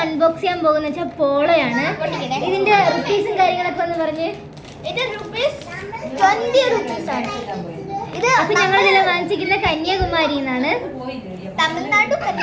അൺബോക്സ് ചെയ്യാൻ പോകുന്ന വെച്ചാൽ പോളോയാണ്. ഇതിന്റെ റുപ്പീസും കാര്യങ്ങളൊക്കെ ഒന്ന് പറഞ്ഞ്. ഇത് ₹20 ആണ്. ഇത് അപ്പൊ ഞങ്ങൾ ഇതിൽ വാങ്ങിച്ചിരിക്കുന്ന കന്യാകുമാരി എന്നാണ്, തമിഴ്നാട്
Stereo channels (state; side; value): identical; both; correlation 1.00